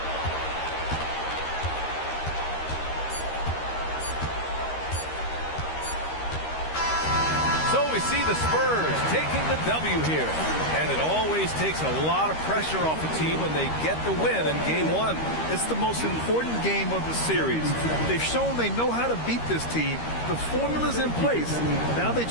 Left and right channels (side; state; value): right; late; 13 ms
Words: So we see the Spurs taking the W here. And it always takes a lot of pressure off a team when they get the win in game one. It's the most important game of the series. They've shown they know how to beat this team. The formula's in place. Now they